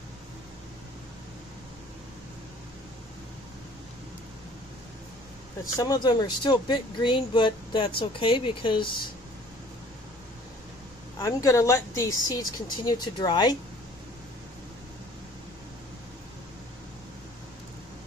But some of them are still a bit green, but that's okay because I'm going to let these seeds continue to dry.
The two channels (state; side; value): normal; both; correlation 0.53